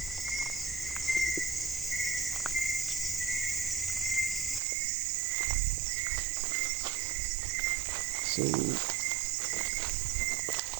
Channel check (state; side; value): drops out; left; at 4.6 s